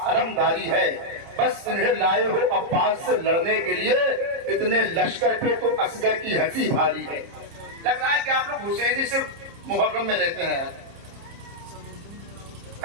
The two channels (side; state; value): left; late; 30 ms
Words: علمداری ہے، بس انہیں لائے ہو عباس سے لڑنے کے لیے، اتنے لشکر پہ تو اصغر کی ہنسی بھاری ہے۔ لگ رہا ہے کہ آپ لوگ حسینی صرف محرم میں رہتے ہیں،